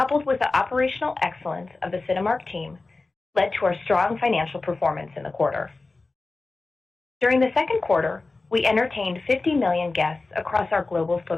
with the operational excellence of the Cinemark team, led to our strong financial performance in the quarter. During the second quarter, we entertained 50 million guests across our global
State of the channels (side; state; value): right; quieter; 3.5 dB